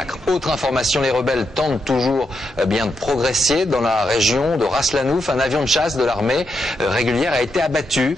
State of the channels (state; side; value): normal; both; correlation 0.83